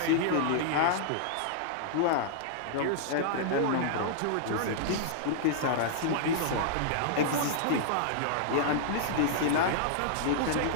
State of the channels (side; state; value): both; different; correlation -0.01